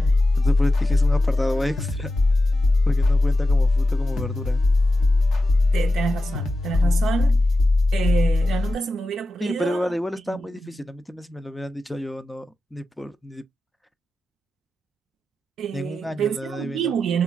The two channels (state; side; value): normal; both; correlation 0.92